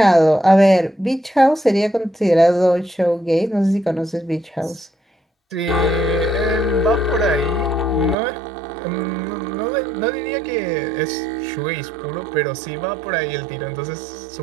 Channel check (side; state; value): left; drops out; at 8.2 s